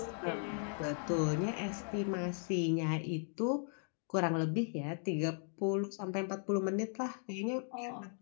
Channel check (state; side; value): silent; right; 53 dB below the other